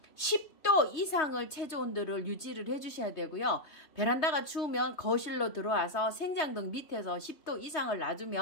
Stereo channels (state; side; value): late; right; 3.2 ms